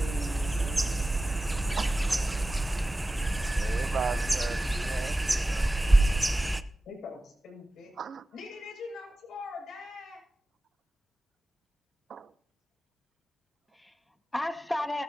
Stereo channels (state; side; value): normal; both; correlation 0.96